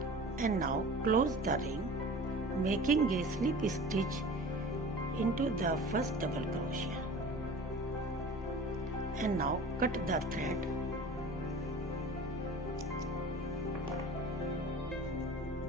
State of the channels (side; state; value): both; normal; correlation 0.40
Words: And now close the ring, making a slip stitch into the first double crochet. And now cut the thread.